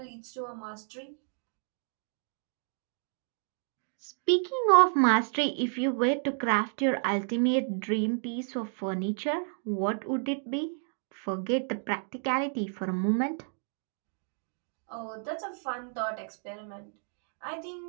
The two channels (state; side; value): silent; left; 57 dB below the other